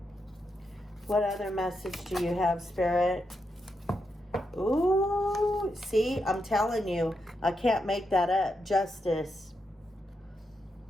What other message do you have, Spirit? Ooh, see, I'm telling you, I can't make that up. Justice.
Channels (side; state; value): both; normal; correlation 0.84